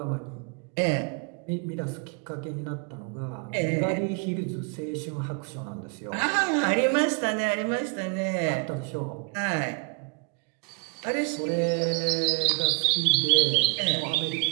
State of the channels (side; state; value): left; quieter; 31.4 dB